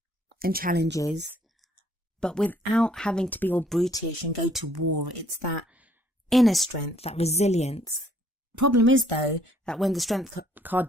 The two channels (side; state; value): both; normal; correlation 0.63